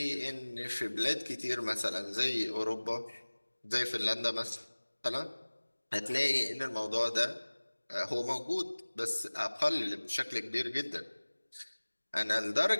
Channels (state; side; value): inverted; both; correlation -1.00